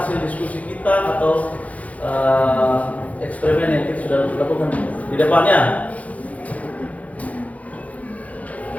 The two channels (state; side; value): late; right; 0.069 ms